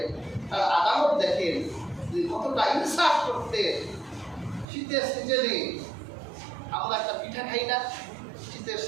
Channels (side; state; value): left; drops out; at 4.7 s